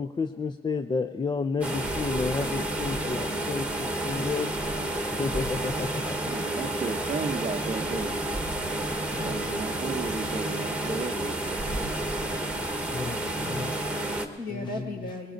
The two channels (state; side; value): normal; both; correlation 0.61